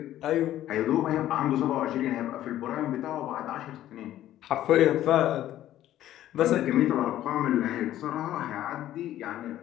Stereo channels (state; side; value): quieter; right; 13.0 dB